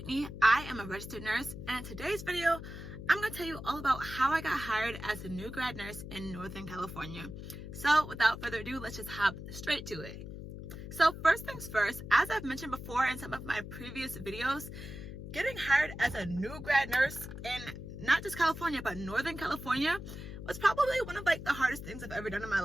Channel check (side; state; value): left; noise; hum, 10 dB below the sound